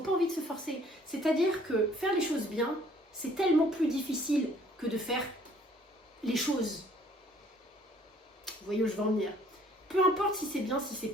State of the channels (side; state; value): both; normal; correlation 0.58